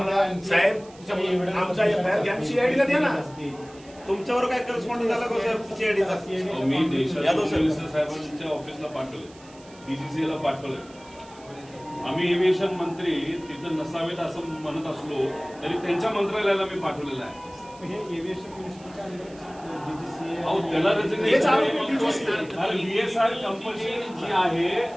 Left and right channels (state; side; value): noise; right; hiss, 24 dB below the sound